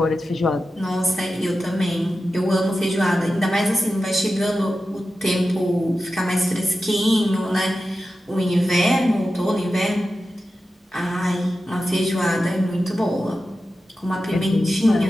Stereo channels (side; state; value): both; normal; correlation 0.92